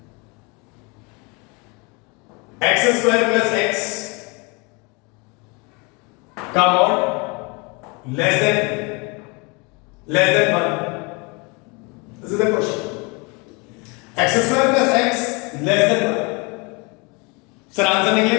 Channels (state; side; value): quieter; right; 29.5 dB